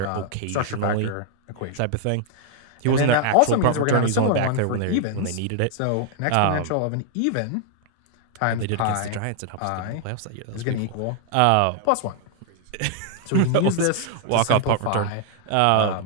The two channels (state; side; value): different; both; correlation -0.01